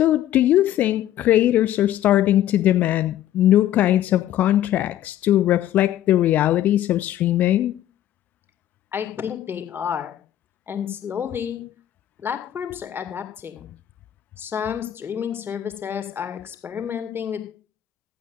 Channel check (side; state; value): right; quieter; 12.4 dB